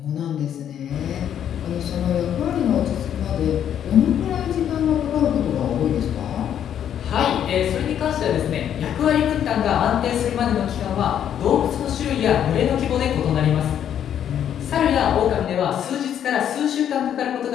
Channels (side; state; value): right; quieter; 9.6 dB